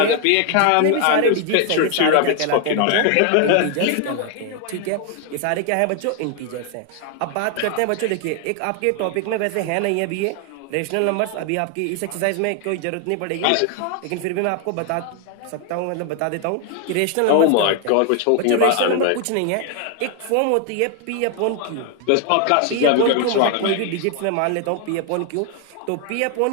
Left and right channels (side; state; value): both; different; correlation 0.01